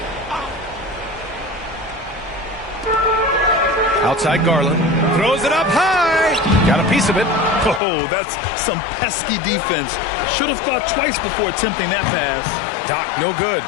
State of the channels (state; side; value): drops out; right; at 7.8 s